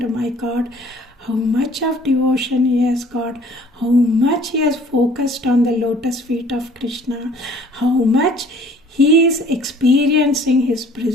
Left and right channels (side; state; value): both; normal; correlation 0.54